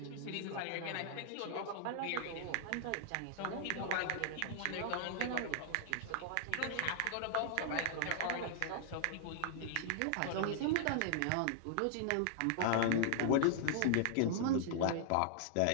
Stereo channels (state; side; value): different; both; correlation -0.01